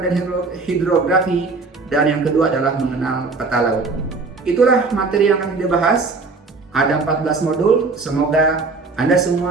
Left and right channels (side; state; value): left; quieter; 4.0 dB